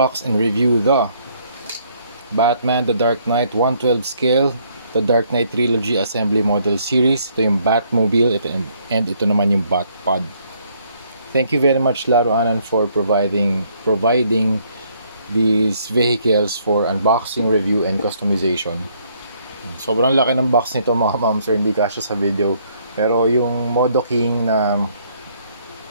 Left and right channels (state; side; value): inverted; both; correlation -0.67